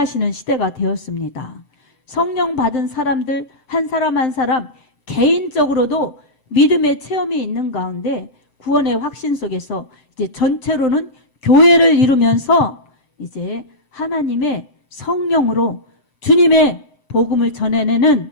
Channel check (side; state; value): right; late; 6.7 ms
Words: 시대가 되었습니다. 성령 받은 사람들 한 사람 한 사람 개인적으로도 믿음의 체험이 있는 가운데 구원의 확신 속에서 이제 전체로는 교회를 이루면서 이제 하나님의 성령으로 주님의 복음을 전해내는